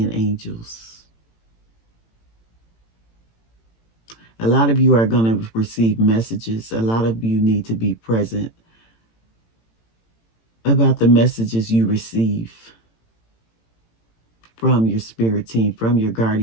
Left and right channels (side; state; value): right; late; 18 ms